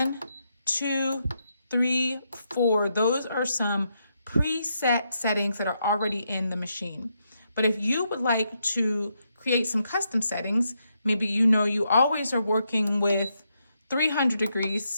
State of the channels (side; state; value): both; inverted; correlation -0.80